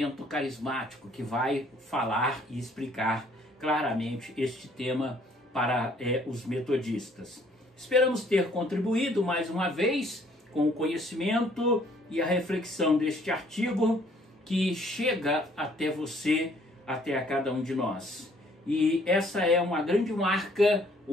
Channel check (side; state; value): both; normal; correlation 0.61